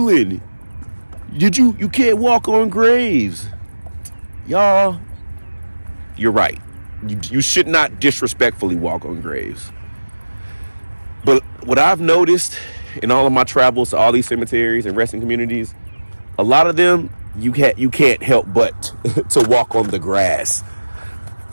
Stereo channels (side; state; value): both; inverted; correlation -1.00